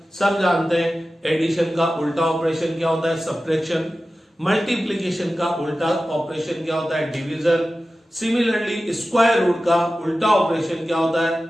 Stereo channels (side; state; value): both; normal; correlation 0.94